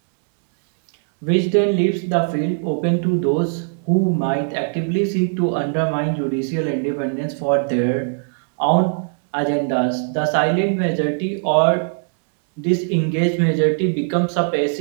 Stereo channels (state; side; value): silent; left; 65 dB below the other